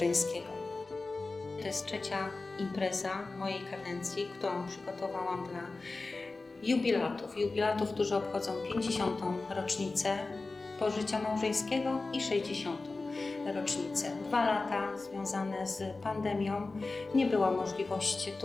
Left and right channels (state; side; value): quieter; right; 3.6 dB